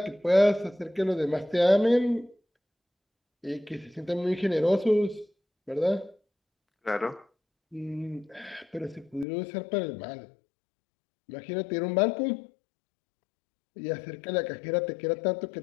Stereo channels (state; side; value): drops out; right; at 9.2 s